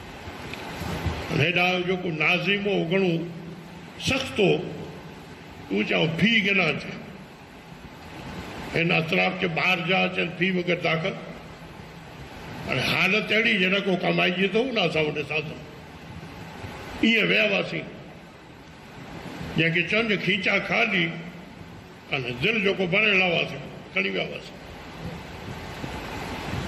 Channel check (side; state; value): both; identical; correlation 1.00